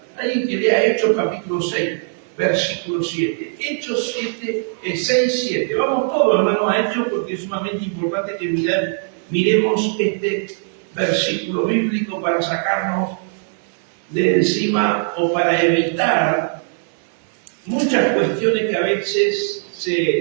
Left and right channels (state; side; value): silent; left; 61 dB below the other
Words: Alguien que lea Hechos capítulo 6, versículo 7. Hechos 6, 7. Vamos todos, hermanos, a Hechos, porque es sumamente importante que miremos este versículo bíblico para sacarnos de encima o para evitar muchas cuestiones que a veces se